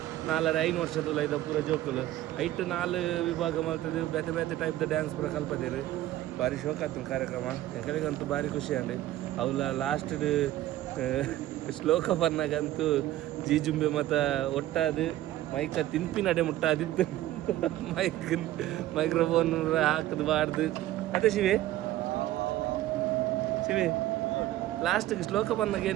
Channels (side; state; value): left; quieter; 14.6 dB